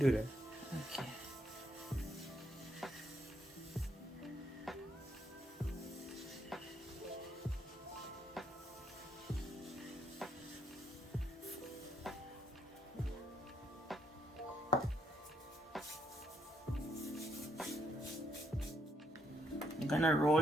that. Okay. I'm gonna roll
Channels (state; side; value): normal; both; correlation 0.74